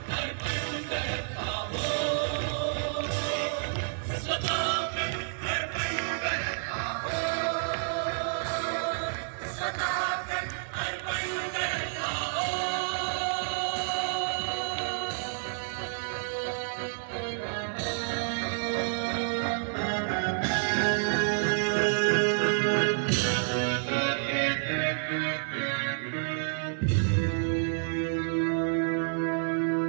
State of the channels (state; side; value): silent; left; 57 dB below the other